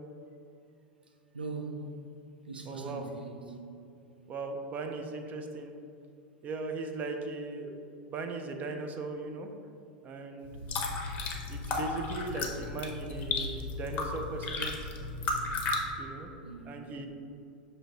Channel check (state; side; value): normal; both; correlation 0.09